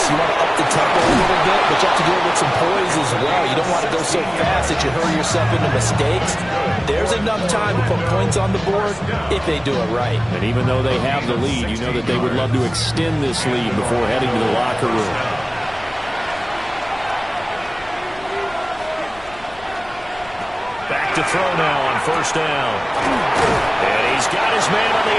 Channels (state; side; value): noise; left; rumble, 22 dB below the sound